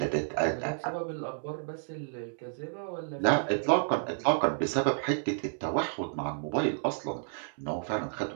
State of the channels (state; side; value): silent; left; digital silence